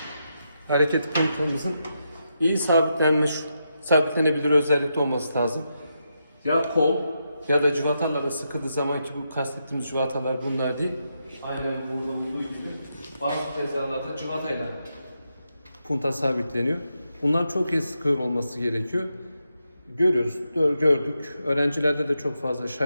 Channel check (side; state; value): both; inverted; correlation -0.84